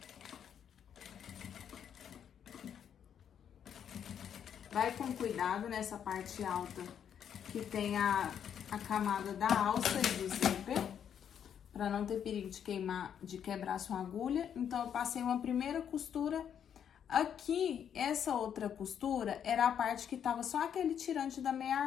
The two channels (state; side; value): quieter; right; 8.6 dB